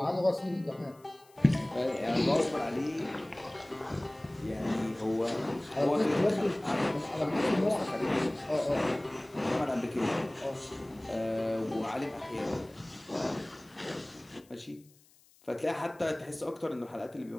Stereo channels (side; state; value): left; noise; hiss, 29 dB below the sound